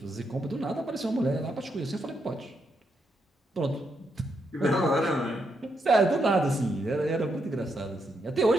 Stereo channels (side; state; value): both; normal; correlation 0.80